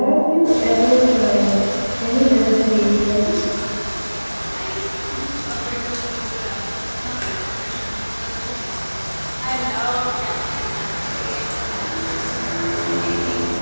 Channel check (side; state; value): both; inverted; correlation -1.00